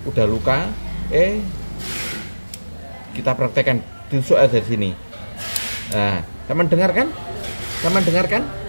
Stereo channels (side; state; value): both; inverted; correlation -1.00